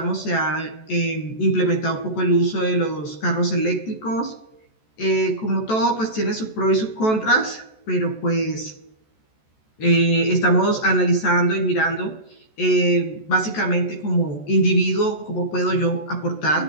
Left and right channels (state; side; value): late; right; 14 ms